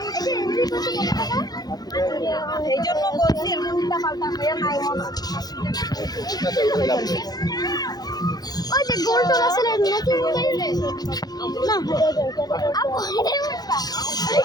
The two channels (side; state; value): right; late; 0.19 ms